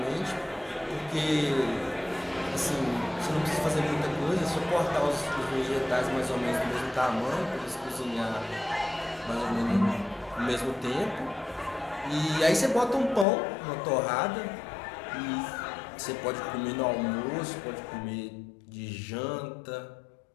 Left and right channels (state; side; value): drops out; right; at 13.2 s